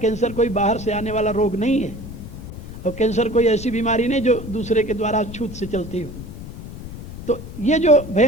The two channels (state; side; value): noise; left; rumble, 11 dB below the sound